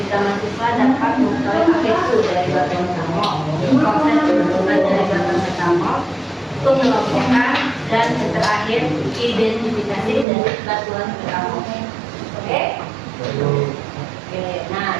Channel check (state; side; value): drops out; left; at 10.2 s